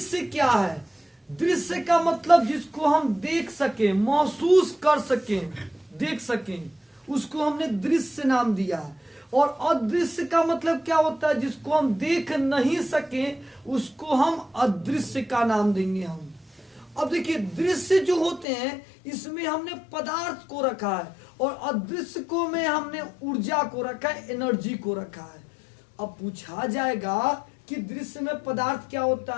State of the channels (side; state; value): right; drops out; at 18.4 s